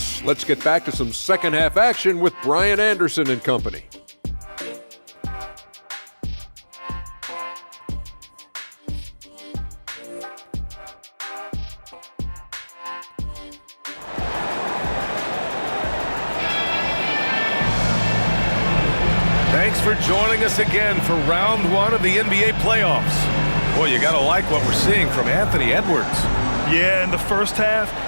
Let's get back to some second half action with Brian Anderson and company. Thanks for joining us again for round 1 of the NBA playoffs. Boy, you gotta like what we're seeing from Anthony Edwards. Yeah, in the first half,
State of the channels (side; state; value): both; inverted; correlation -1.00